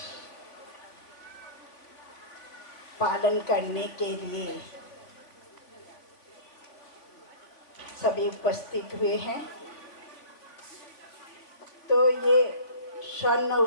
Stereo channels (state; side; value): late; right; 3.5 ms